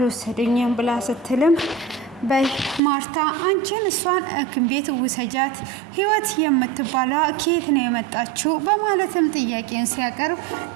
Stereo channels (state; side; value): drops out; left; at 2.8 s